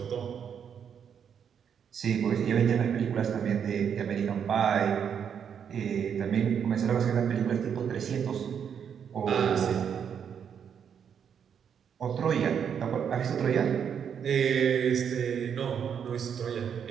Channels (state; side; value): quieter; left; 7.8 dB